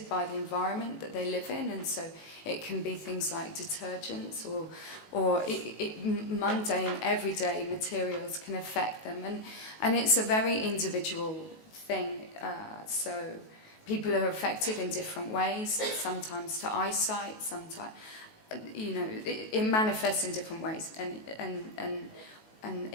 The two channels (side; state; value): right; late; 19 ms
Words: by the environment that they live in, and so it can be things like detergents or mundane, everyday materials can affect them, and it's a very individual thing. So people are affected in different ways, sometimes to eyesight, sometimes, you know, it manifests in different ways, and